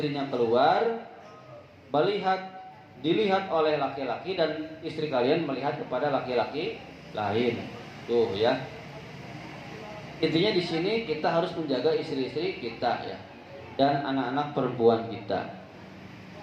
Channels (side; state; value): both; identical; correlation 1.00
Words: keluar, dilihat oleh laki-laki dan istri kalian melihat kepada laki-laki lain. Tuh ya. Intinya di sini kita harus menjaga istri-istri kita ya dan anak-anak perempuan kita.